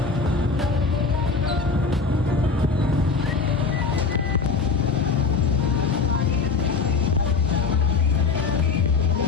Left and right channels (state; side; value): quieter; right; 4.7 dB